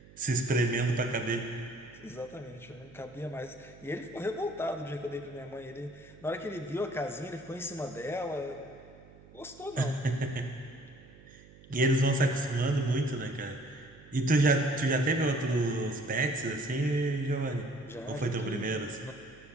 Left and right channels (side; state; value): right; noise; hum, 22 dB below the sound